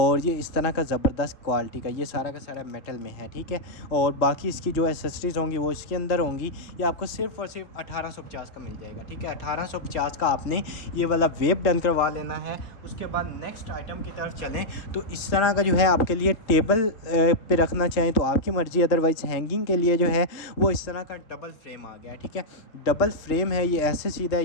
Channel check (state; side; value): late; right; 3.7 ms